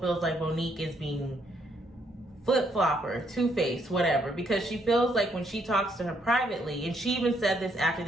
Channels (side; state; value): both; normal; correlation 0.72